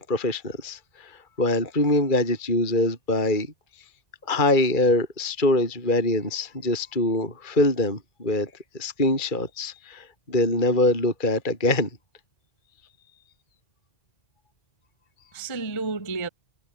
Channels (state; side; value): late; right; 2.3 ms